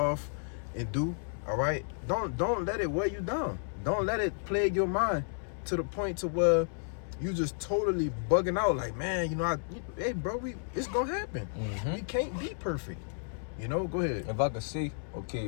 and do, all right? Don't let it weigh you down. Don't let it plague your mind to the point to where you just totally bugging out like, man, you know, hey, bro, it's gonna happen. We can't be perfect. You know, go ahead. If I could see,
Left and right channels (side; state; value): right; silent; 56 dB below the other